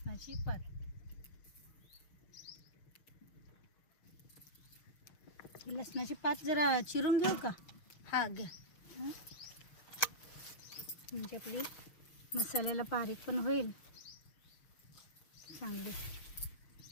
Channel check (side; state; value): right; late; 6.6 ms